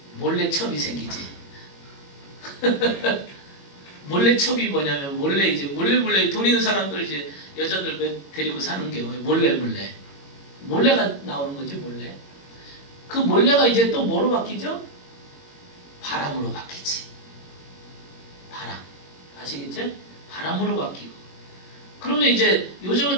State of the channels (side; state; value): right; late; 21 ms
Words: 몰래 첩이 생기지. 몰래 첩이 뭐냐면 몰래 돈 있는 사람들 이제 여자들 데리고 사는 경우에 몰래가 나오는 거지. 몰래. 그 몰래가 이제 또 뭐로 바뀌죠? 바람으로 바뀌지. 바람. 아시겠죠? 바람으로 바뀌고. 그러면 이제 요즘은